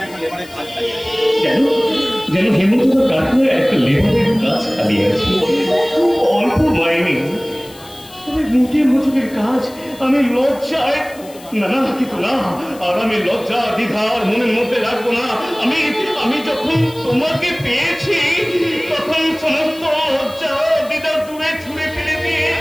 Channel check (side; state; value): left; noise; hiss, 21 dB below the sound